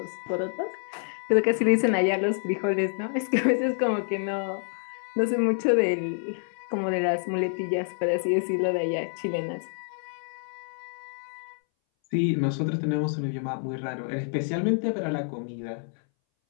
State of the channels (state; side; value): silent; right; 60 dB below the other